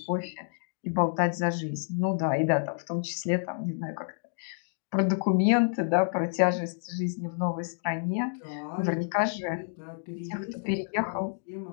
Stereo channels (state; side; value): silent; right; digital silence